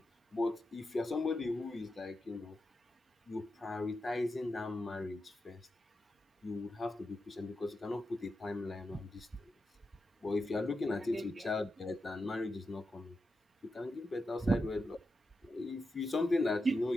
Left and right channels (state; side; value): normal; both; correlation 0.88